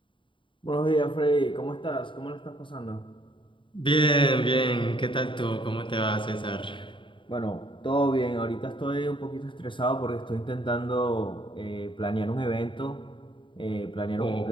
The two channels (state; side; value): late; right; 0.24 ms